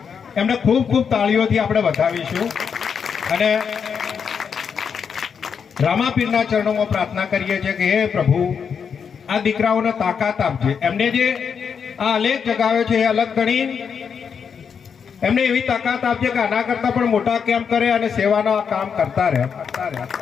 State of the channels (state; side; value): quieter; right; 6.7 dB